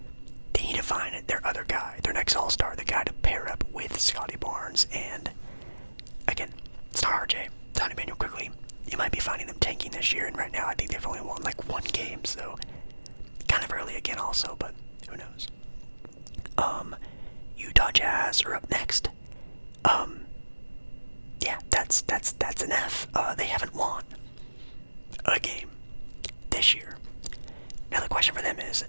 They need to find their other guy, their next all-star, the guy to pair up with Scotty Barnes. And again, it's not RJ, it's not Emmanuel Quickly. You might be finding them tanking this year, and right now I think they've only won like 1 game, so kind of early again also, but who knows. Utah Jazz are up next. Yeah, that's an F. They haven't won a game this year. Now the question for them is,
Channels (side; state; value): both; inverted; correlation -1.00